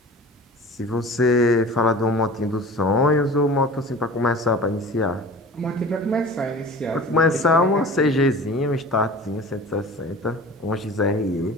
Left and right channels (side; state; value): both; normal; correlation 0.40